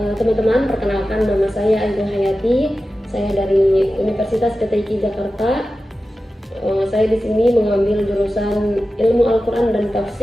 teman-teman, perkenalkan nama saya Ayu Hayati. Saya dari Universitas PTIQ Jakarta. Saya di sini mengambil jurusan Ilmu Al-Quran dan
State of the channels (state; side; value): normal; both; correlation 0.94